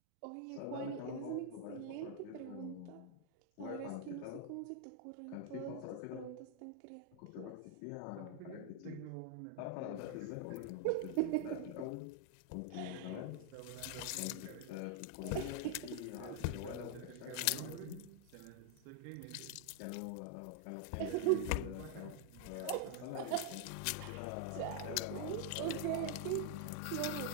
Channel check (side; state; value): both; different; correlation 0.00